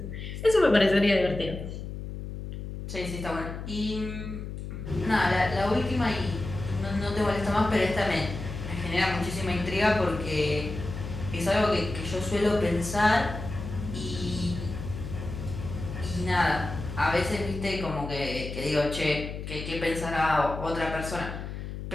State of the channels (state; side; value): noise; left; hum, 8 dB below the sound